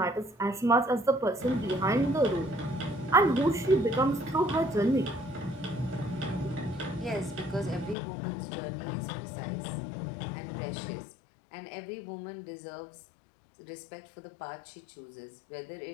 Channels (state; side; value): drops out; right; at 8.0 s